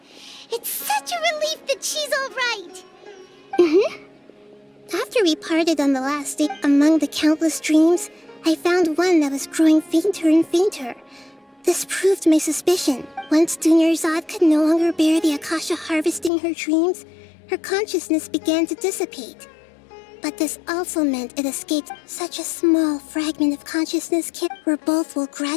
It's such a relief that she's all right. After we parted on the last day, among the countless dreams, I found one that was growing fainter and fainter. This proved my suspicion. Once Dunyarzad could no longer bear the Akasha harvesting her dreams, her consciousness began to dissipate. But this also meant it escaped such a small fragment of consciousness where both will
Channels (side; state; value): right; drops out; at 16.3 s